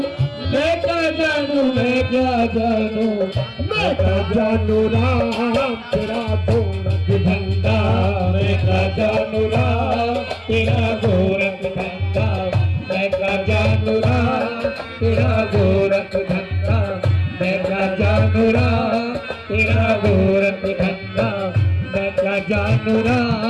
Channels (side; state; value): both; identical; correlation 1.00